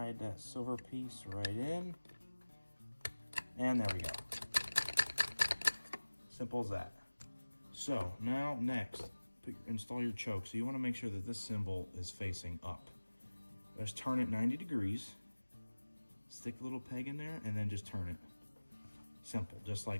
that silver piece right in. And there we go. Simple as that. So now next, install your choke. So you want to make sure that this cymbal is facing up. Just turn it 90 degrees, stick a little peg in there, and then just turn it. Simple, just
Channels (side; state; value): both; inverted; correlation -1.00